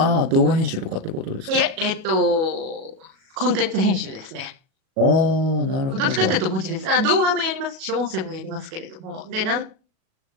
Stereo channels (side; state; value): left; late; 37 ms